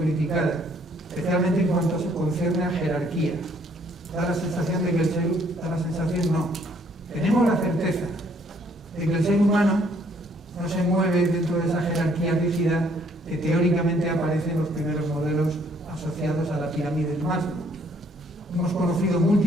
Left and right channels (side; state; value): both; normal; correlation 0.64